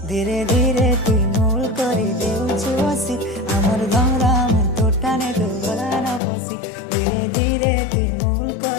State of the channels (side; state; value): right; drops out; at 6.2 s